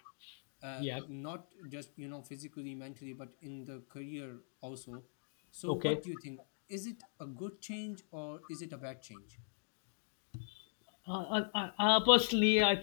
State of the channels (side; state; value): right; silent; digital silence